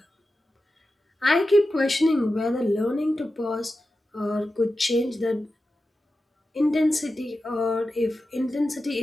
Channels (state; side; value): normal; both; correlation 0.92